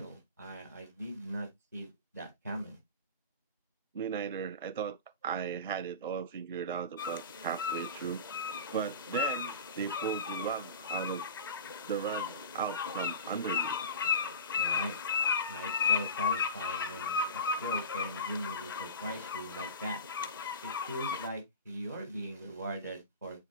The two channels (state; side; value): inverted; both; correlation -0.31